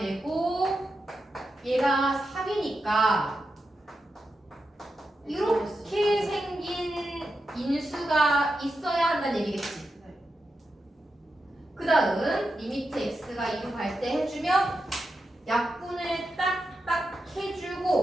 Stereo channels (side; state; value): both; normal; correlation 0.88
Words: 얘가 3이니까 이렇게 생긴 인수가 있어야 한다는 얘기겠지. 그 다음 리미트 x가 2로 갈 때 해주면 약분을 딱딱